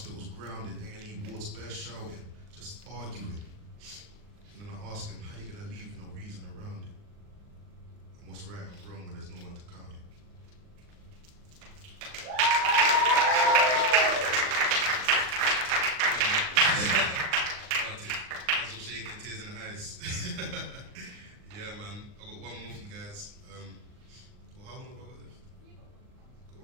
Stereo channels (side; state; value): left; late; 39 ms